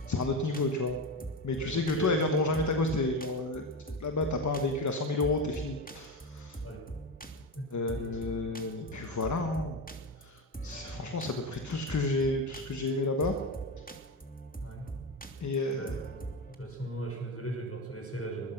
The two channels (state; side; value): normal; both; correlation 0.19